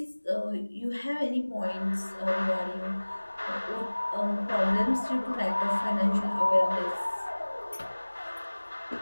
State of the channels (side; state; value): both; inverted; correlation -1.00